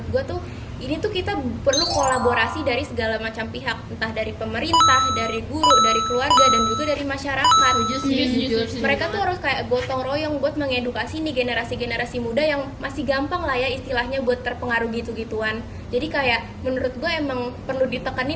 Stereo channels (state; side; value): identical; both; correlation 1.00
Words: gue tuh ini tuh kita perlu kolaborasi dari segala macam pihak, entah dari pemerintah, dari guru, dari keluarga, dan juga dari masyarakat. Setuju. Mereka tuh harus kayak gotong royong buat mengedukasi nih generasi-generasi muda yang masih gampang lah ya istilahnya buat terpengaruh gitu-gituan. Jadi kayak menurut gue emang perlu